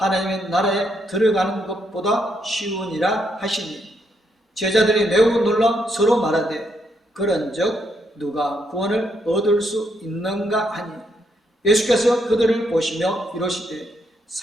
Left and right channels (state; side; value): normal; both; correlation 0.76